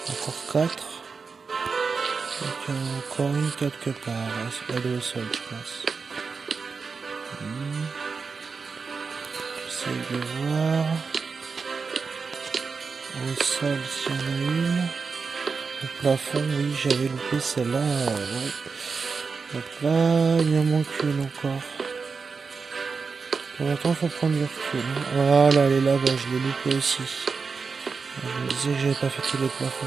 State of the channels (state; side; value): quieter; left; 5.0 dB